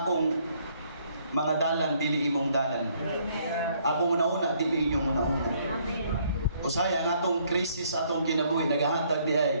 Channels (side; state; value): both; inverted; correlation -0.66